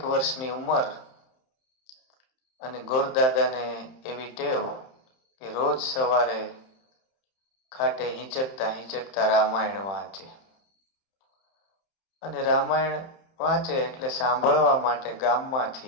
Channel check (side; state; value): right; late; 31 ms